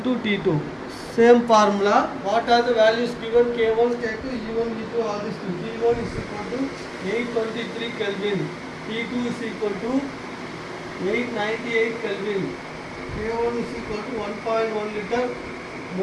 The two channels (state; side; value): identical; both; correlation 1.00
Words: T2. Same formula. What are the values given? K1, K2, E1, E2, all these things. T1 is equal to 823 Kelvin. T2 is equal to 898 Kelvin. K1 is equal to 1.1 liter